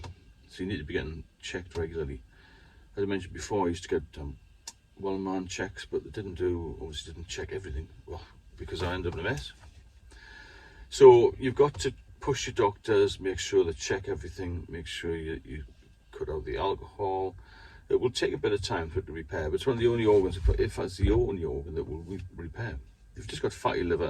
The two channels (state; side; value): identical; both; correlation 1.00